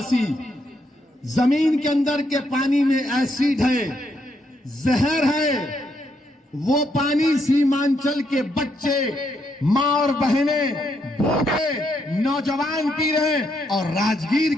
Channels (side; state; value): both; normal; correlation 0.77